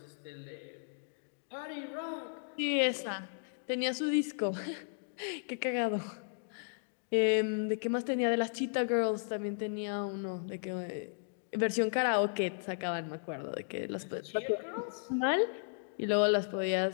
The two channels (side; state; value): right; silent; digital silence